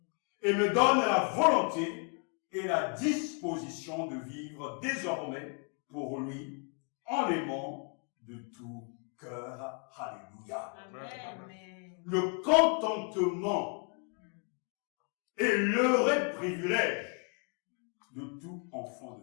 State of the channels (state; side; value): quieter; right; 37.7 dB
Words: et me donne la volonté et la disposition de vivre désormais pour lui en l'aimant de tout cœur. Alléluia. Amen. Le contentement est l'heureux privilège de tout enfant